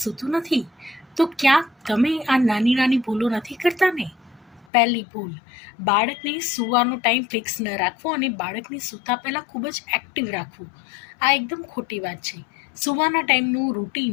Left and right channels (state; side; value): drops out; right; at 4.7 s